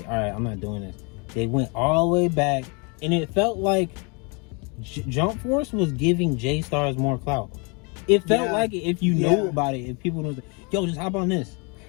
all right, I'm not doing this. They went all the way back, and it felt like Jump Force was giving J-Stars more clout. It felt like it if you know about it, if people know, yo, just hop on this.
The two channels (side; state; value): right; quieter; 32.7 dB